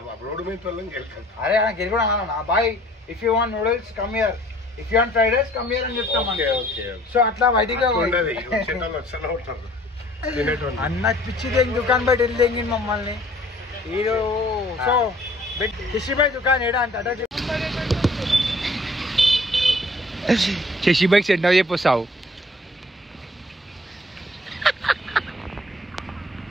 అరే గెలుగుడా అన్నా boy if you want noodles come here if you want fried rice come here అని చెప్తాం సో అట్లా బయటికి అన్న పిచ్చి దేంగి దుకాణం బయట వెళ్ళి మమ్మల్ని హీరో సో శశిభాయ్ దుకాణం ఏడా అంటే అట శశిభాయ్ సెంటర్ చెప్పొస్తావు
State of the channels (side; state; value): both; normal; correlation 0.55